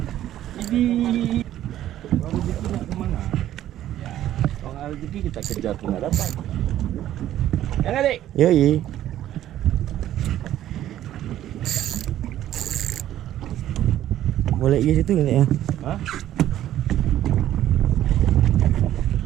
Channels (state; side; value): quieter; left; 12.5 dB